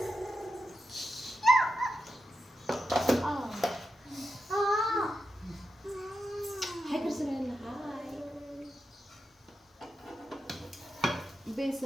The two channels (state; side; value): normal; both; correlation 0.88